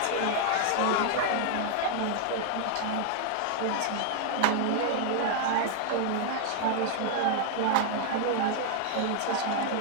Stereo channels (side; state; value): both; different; correlation 0.00